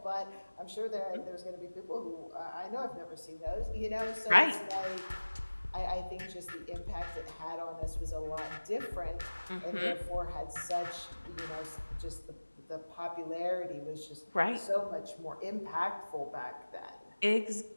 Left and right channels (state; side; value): inverted; both; correlation -1.00